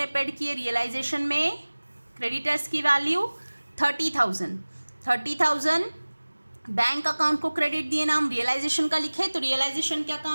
पेड किए रियलाइजेशन में क्रेडिटर्स की वैल्यू 30,000 बैंक अकाउंट को क्रेडिट दिए, नाम रियलाइजेशन का लिखे, तो रियलाइजेशन के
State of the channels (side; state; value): both; inverted; correlation -1.00